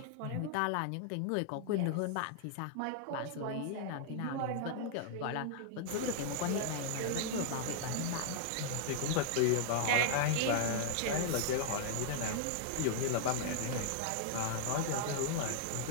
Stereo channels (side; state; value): both; different; correlation -0.01